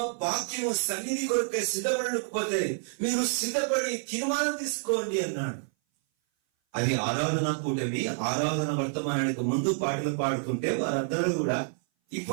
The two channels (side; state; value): left; silent; 57 dB below the other